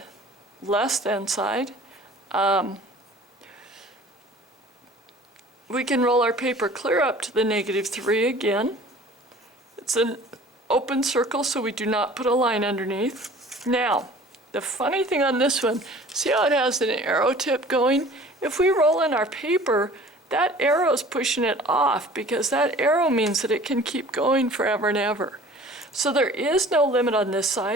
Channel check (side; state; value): both; normal; correlation 0.47